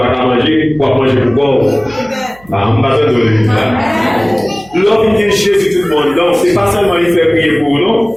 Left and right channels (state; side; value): noise; right; hum, 27 dB below the sound